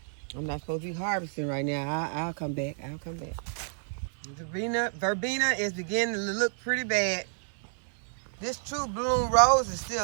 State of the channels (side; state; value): left; silent; digital silence